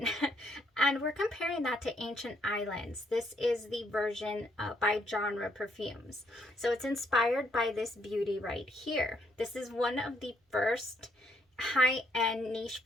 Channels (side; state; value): both; normal; correlation 0.72